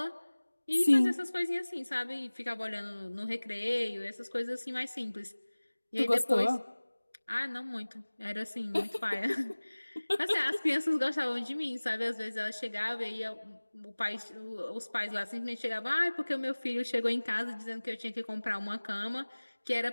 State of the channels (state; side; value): inverted; both; correlation -1.00